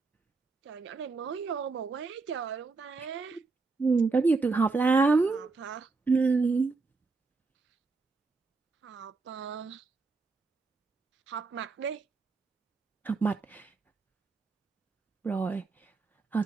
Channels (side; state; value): left; quieter; 4.0 dB